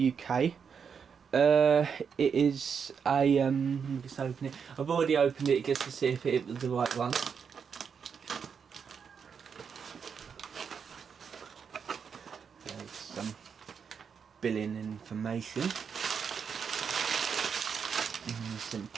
It is a let me just open it. I've already opened it just to see if it was the right one. There's some billing information. Some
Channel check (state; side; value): quieter; left; 6.6 dB